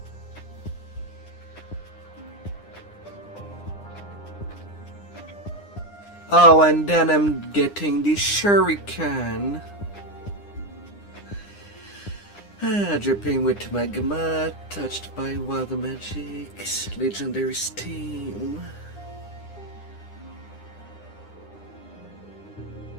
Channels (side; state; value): right; late; 9.9 ms